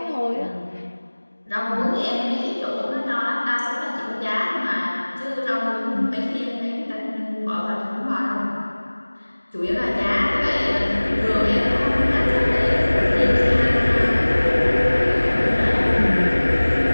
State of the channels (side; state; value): both; inverted; correlation -1.00